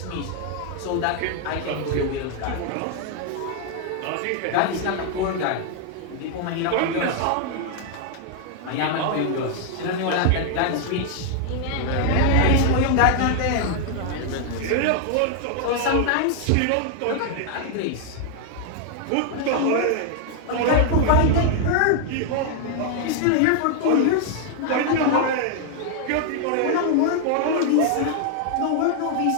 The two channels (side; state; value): both; different; correlation 0.00